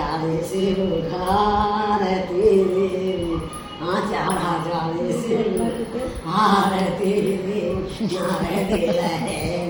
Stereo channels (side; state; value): both; identical; correlation 1.00